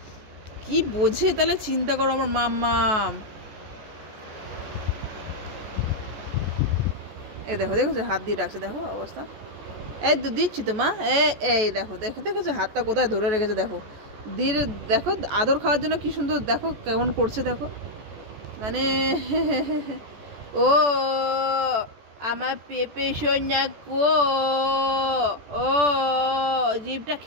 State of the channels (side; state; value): left; late; 14 ms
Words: কি বোঝে তাহলে চিন্তা করো আমার মাম্মাম। এই দেখো, দেখেছো হাত দিয়ে ডাকছে, দেখো অবস্থা। এই তো দিচ্ছি তো মা, এই দেখো, দেখেছো হাতটা কোথায় ধরে রেখেছে, দেখো দিয়ে দেখো আদর খাওয়ার জন্য কি সুন্দর, দেখো কেমন করছে, দেখো মানে ও আমার পেঁপে সোনা কো, ও জিভটা